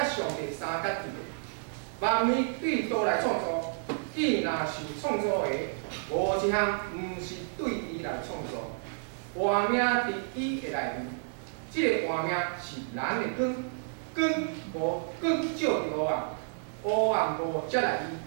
上帝三角伊个。万物对道来创造，伊若是创造的，无一项毋是对伊来创造。活命伫伊的内面，即、个活命是咱的光，光无光照着黑暗，黑暗无接来伊。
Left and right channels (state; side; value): silent; left; digital silence